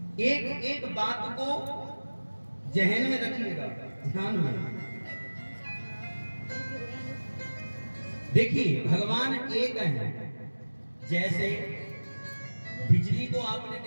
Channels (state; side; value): inverted; both; correlation -1.00